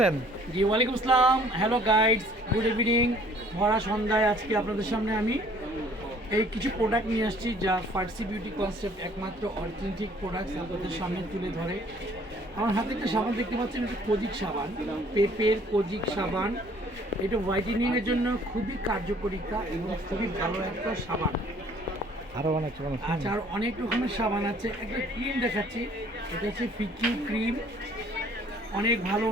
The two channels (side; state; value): both; normal; correlation 0.57